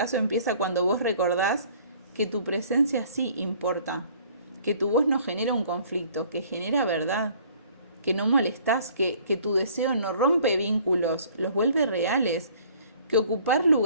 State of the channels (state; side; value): inverted; both; correlation -0.55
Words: empieza cuando vos recordás que tu presencia sí importa, que tu voz no genera un conflicto, que genera verdad, que no molestás, que tu deseo no rompe vínculos, los vuelve reales, que ocupar